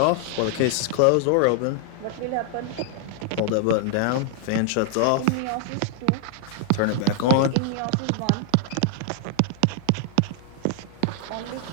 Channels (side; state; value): both; different; correlation 0.00